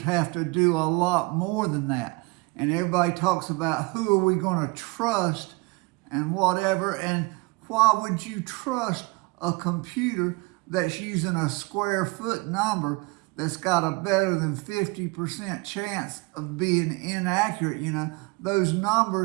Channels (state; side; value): quieter; left; 26.2 dB